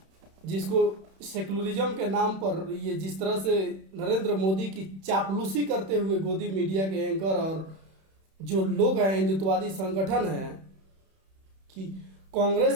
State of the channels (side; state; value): left; late; 31 ms